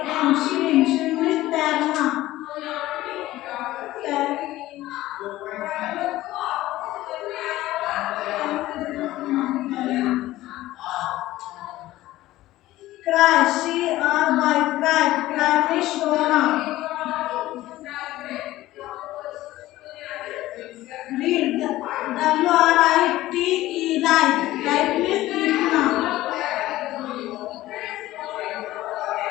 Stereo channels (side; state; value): right; quieter; 16.1 dB